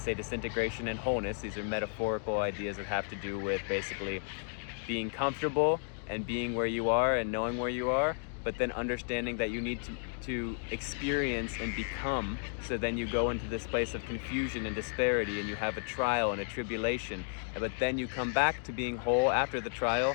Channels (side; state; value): right; silent; 56 dB below the other